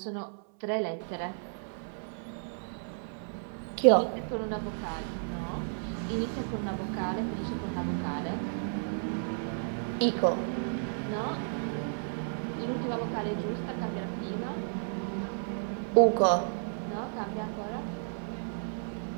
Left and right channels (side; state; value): left; silent; 56 dB below the other